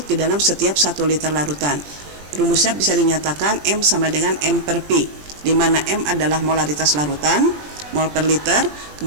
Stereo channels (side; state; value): left; late; 20 ms